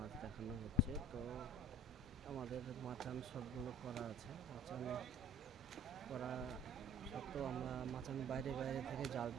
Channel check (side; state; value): both; normal; correlation 0.47